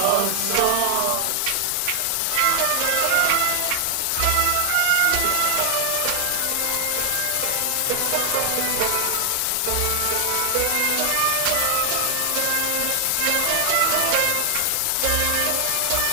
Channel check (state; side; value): different; both; correlation 0.00